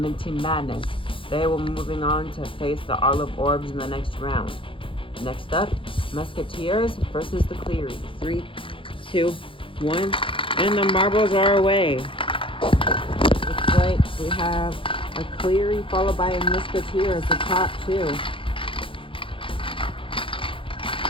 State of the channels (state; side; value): late; right; 0.25 ms